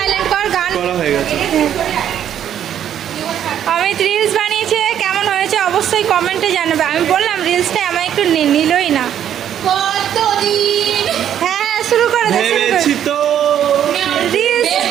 কর, গান করা হয়ে গেছে। অমিত রিলস বানিয়েছে, কেমন হয়েছে অবশ্যই কমেন্টে জানাবে। আমি বললাম রিলসটা আমার একটু নিলই না। কতদিন হ্যাঁ শুরু করে দে, শুরু ভেবেছি করে। তো রিলস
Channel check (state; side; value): quieter; left; 10.0 dB